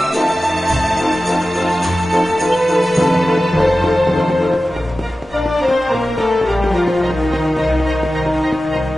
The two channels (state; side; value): normal; both; correlation 0.94